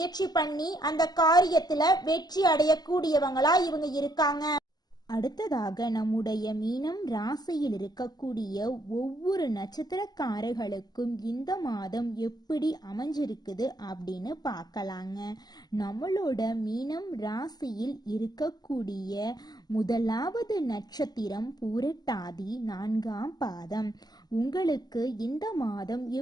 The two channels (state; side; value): late; right; 0.20 ms